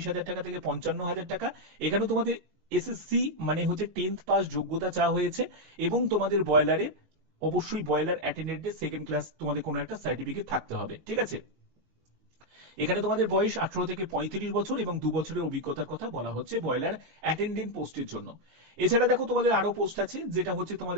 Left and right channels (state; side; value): late; left; 19 ms